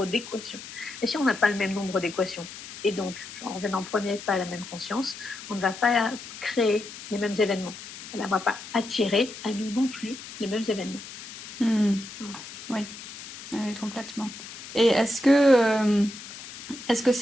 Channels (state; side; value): noise; left; hiss, 13 dB below the sound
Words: d'équations. Et si on n'a pas le même nombre d'équations, Et donc, en venant en premier pas à la même conscience, on ne va pas créer les mêmes événements. On ne va pas attirer à nous non plus les mêmes événements. Voilà. Oui. Oui, complètement. Et est-ce que